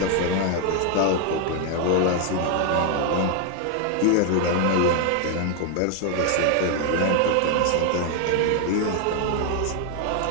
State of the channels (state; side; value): different; both; correlation 0.01